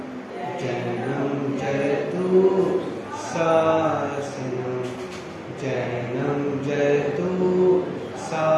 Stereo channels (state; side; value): identical; both; correlation 1.00